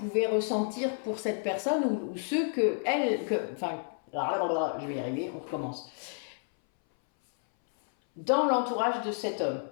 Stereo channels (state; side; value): silent; right; 58 dB below the other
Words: ressentir pour cette personne ou ceux que elle, enfin, je vais y arriver, on recommence. Dans l'entourage de cet homme,